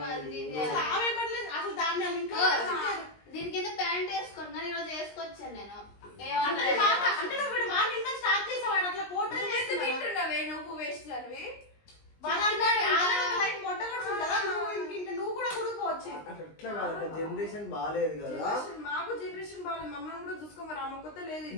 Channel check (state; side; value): late; right; 19 ms